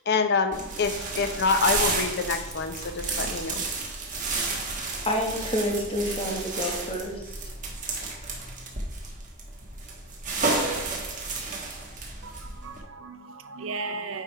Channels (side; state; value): both; normal; correlation -0.02